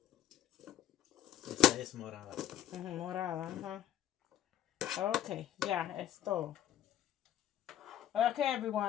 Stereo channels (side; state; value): right; quieter; 11.7 dB